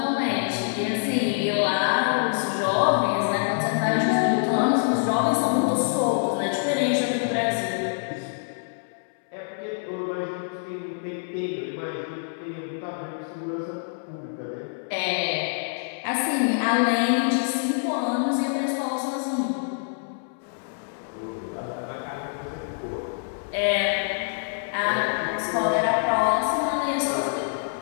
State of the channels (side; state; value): right; silent; 61 dB below the other